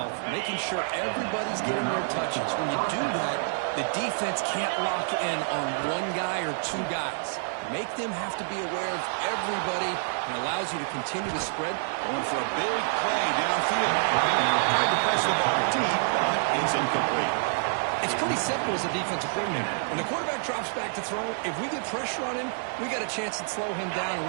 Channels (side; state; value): left; silent; 60 dB below the other